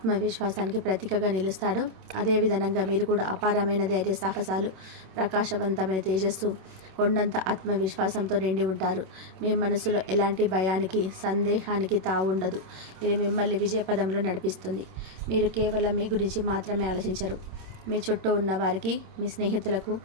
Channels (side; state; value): left; late; 26 ms